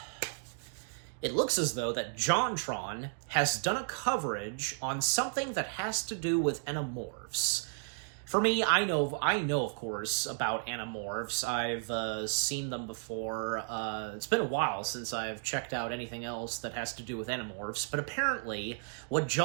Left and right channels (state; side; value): silent; left; digital silence